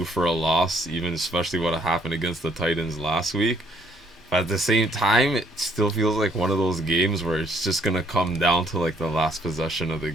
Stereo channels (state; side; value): normal; both; correlation 0.65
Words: for a loss, even especially what happened against the Titans last week. But at the same time, it still feels like one of those games where it's just going to come down to like the last possession of the